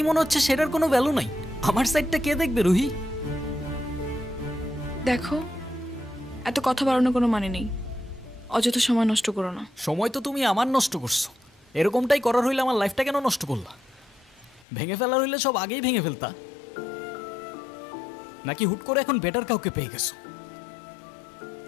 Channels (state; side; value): drops out; right; at 14.7 s